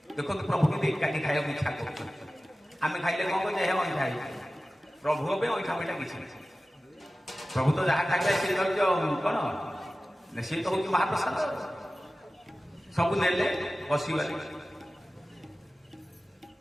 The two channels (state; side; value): normal; both; correlation 0.96